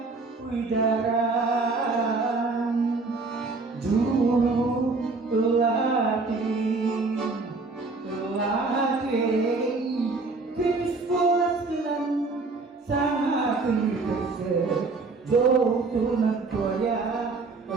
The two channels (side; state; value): left; quieter; 3.8 dB